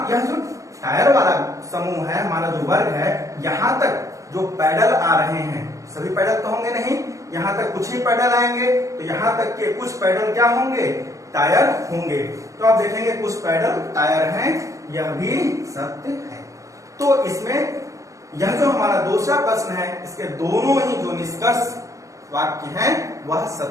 यह जो टायर वाला समूह है, हमारा जो वर्ग है, यहाँ तक जो पैडल आ रहे हैं, सभी पैडल तो होंगे नहीं, यहाँ तक कुछ ही पैडल आएंगे, तो यहाँ तक के कुछ पैडल क्या होंगे, टायर होंगे। तो आप देखेंगे कुछ पैडल टायर हैं, यह भी सत्य है। तो इसमें यह जो हमारा दूसरा प्रश्न है इसके दोनों ही जो निष्कर्ष वाक्य हैं वह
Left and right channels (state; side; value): late; left; 0.15 ms